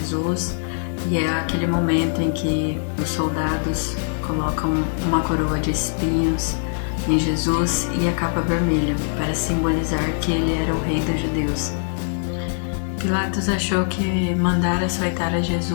e é aquele momento em que os soldados colocam uma coroa de espinhos em Jesus e a capa vermelha para simbolizar que ele era o rei dos judeus. Pilatos achou que mandar açoitar a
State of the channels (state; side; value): silent; right; 64 dB below the other